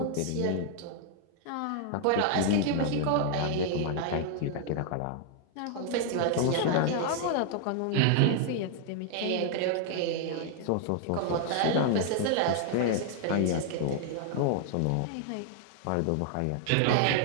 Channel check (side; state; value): both; different; correlation 0.00